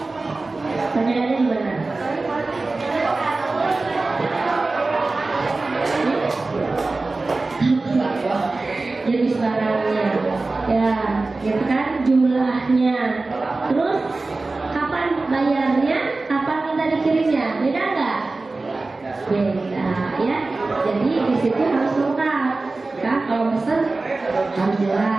Perbedaannya di mana? Jenis barangnya, ya, gitu kan, jumlahnya, terus kapan bayarnya, kapan minta dikirimnya, beda nggak? Beda, ya. Jadi di situ harus lengkap. Kan kalau pesan harus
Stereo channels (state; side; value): quieter; left; 3.4 dB